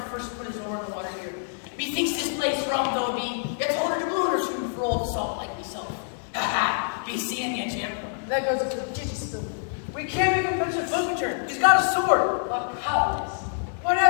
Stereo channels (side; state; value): right; silent; digital silence